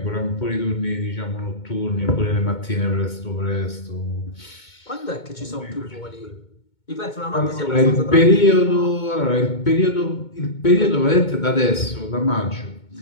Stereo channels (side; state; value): right; late; 2.2 ms